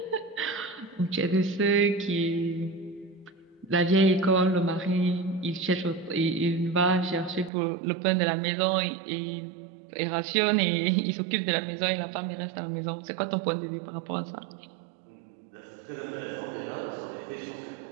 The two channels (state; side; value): drops out; left; at 7.5 s